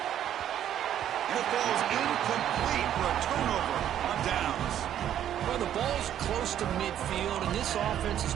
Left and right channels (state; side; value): quieter; left; 10.7 dB